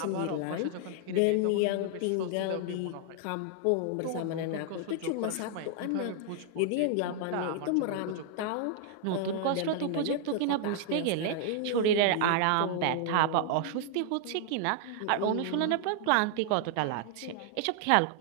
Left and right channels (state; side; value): different; both; correlation 0.00